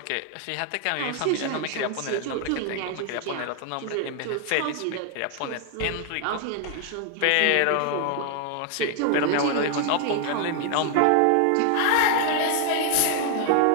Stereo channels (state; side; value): different; both; correlation 0.00